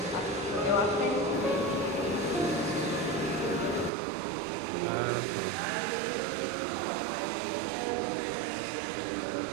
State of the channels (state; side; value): drops out; left; at 3.9 s